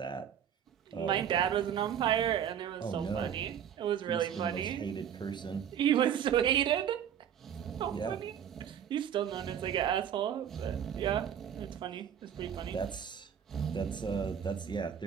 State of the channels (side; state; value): left; quieter; 9.0 dB